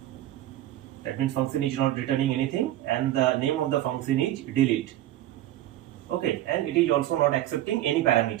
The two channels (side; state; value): left; quieter; 13.8 dB